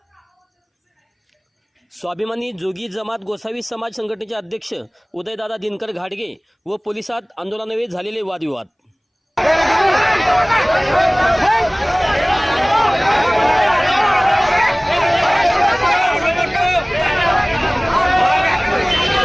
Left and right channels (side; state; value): both; identical; correlation 1.00